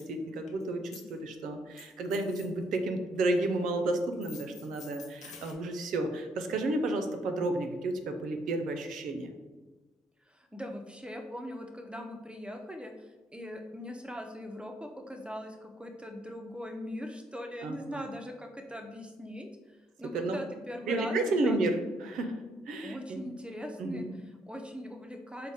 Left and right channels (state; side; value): normal; both; correlation 0.71